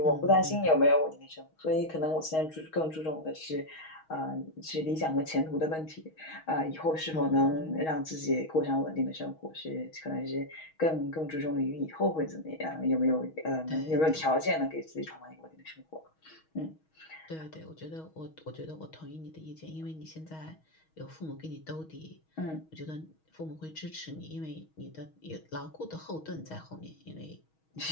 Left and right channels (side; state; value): right; late; 6.3 ms